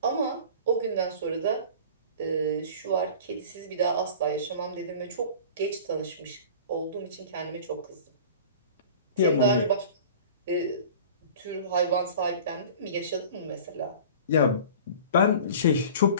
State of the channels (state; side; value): inverted; both; correlation -0.41